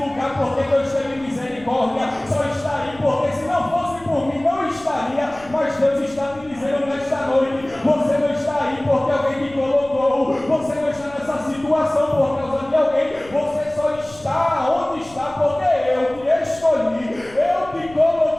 porque Deus teve misericórdia, só está aí porque se não fosse por mim não estaria. Mas Deus está te dizendo nesta noite: você não está aí porque alguém te colocou, você não está nessa situação por causa de alguém, você só está onde está porque eu te escolhi, eu te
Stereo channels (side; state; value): left; noise; rumble, 22 dB below the sound